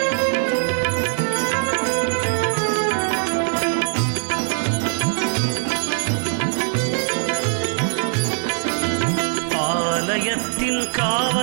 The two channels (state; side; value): silent; left; 59 dB below the other